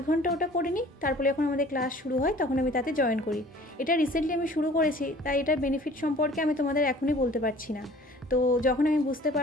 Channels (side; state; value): both; normal; correlation 0.49